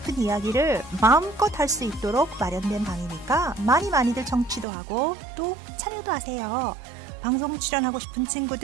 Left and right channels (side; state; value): left; drops out; at 4.7 s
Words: 이야기를 마음껏 할 수 있도록 마련된 방이니까 많이들 청취도 하고 또 참여도 하세요. 방송 출연하고 싶은